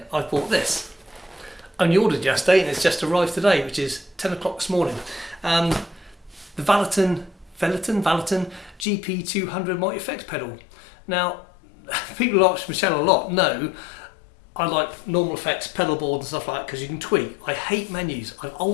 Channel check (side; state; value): right; drops out; at 8.8 s